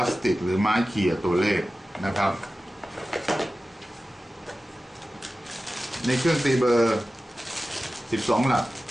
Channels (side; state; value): both; normal; correlation 0.95